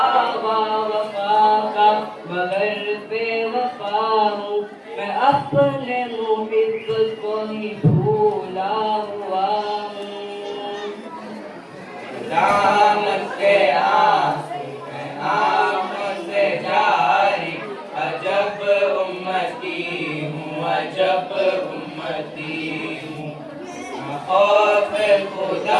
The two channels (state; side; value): identical; both; correlation 1.00